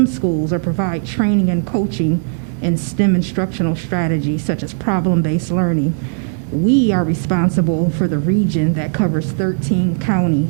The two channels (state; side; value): silent; left; digital silence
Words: schools or provide training and coaching in STEM instructional strategies such as problem-based learning. We are responsible for the region that covers 13